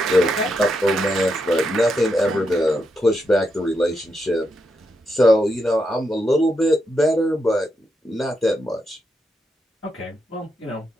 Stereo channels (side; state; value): both; normal; correlation 0.83